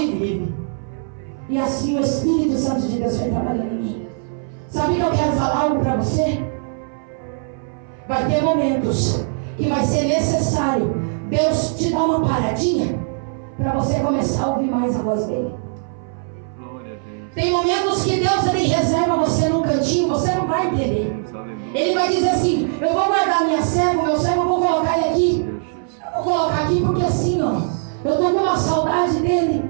vive. E assim o Espírito Santo de Deus vai trabalhar em mim. Sabe que eu quero falar algo para você? Vai ter momentos que vai ser necessário Deus te dá uma paradinha para você começar a ouvir mais a voz dele. Tem momentos que Deus ele reserva você num cantinho, você não vai entender. Ele vai dizer assim: eu vou guardar minha serva, meu servo, eu vou colocar ele aqui. Eu vou colocar aqui porque assim, ó, eu tô com uma saudade dele.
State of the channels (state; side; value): silent; left; 60 dB below the other